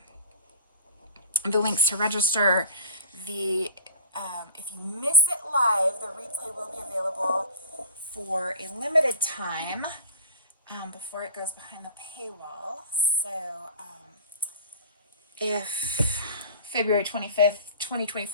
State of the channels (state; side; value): inverted; both; correlation -0.42